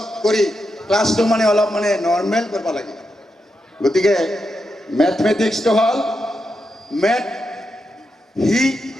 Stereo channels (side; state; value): both; normal; correlation 0.86